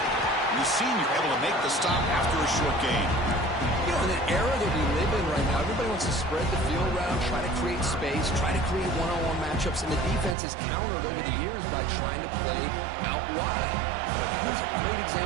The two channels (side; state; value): left; drops out; at 10.4 s